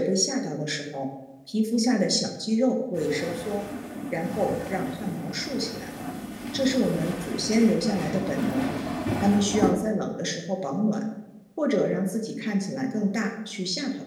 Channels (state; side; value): identical; both; correlation 1.00